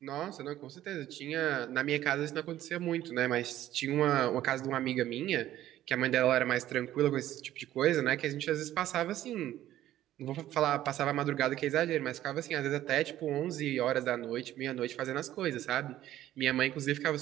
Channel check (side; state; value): left; quieter; 13.3 dB